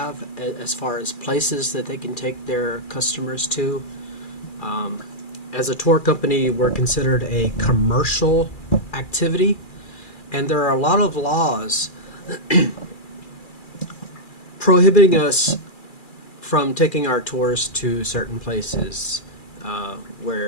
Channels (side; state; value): right; late; 2.4 ms